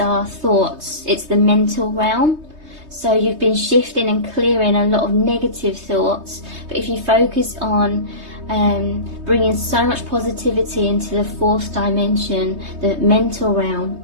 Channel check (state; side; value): late; left; 3.2 ms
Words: thoughts. It's the mental realm. So you've been shifting and clearing a lot of negative thoughts. But if you focus on bringing so much positivity into the 4th dimension, the mental realm,